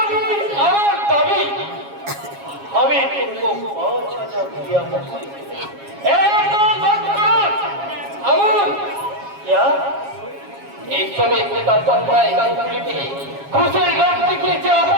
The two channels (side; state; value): left; late; 7.3 ms